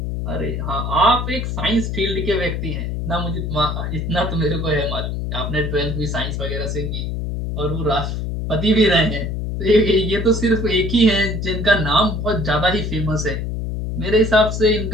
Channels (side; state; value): left; noise; hum, 3 dB below the sound